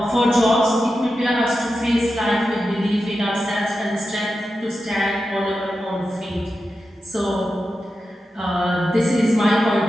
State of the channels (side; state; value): both; normal; correlation 0.90